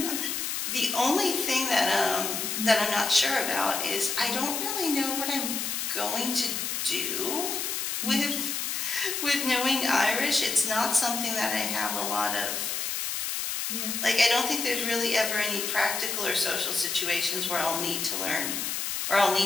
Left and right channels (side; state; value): left; noise; hiss, 2 dB below the sound